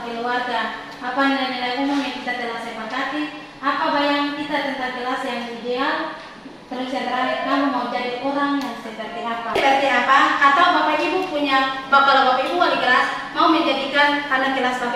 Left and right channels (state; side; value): identical; both; correlation 1.00